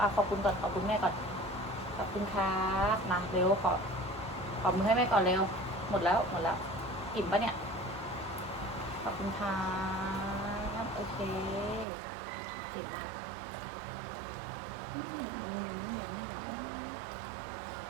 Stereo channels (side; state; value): left; drops out; at 11.9 s